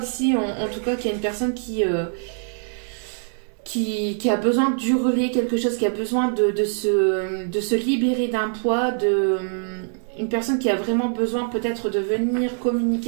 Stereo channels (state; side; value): silent; left; 63 dB below the other